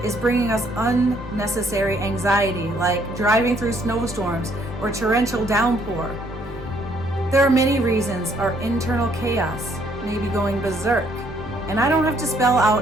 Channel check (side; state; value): both; normal; correlation 0.67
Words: is bringing us unnecessary anxiety, like driving through snowstorms or torrential downpour. There are many reasons our internal chaos may be going berserk, and I don't have to spell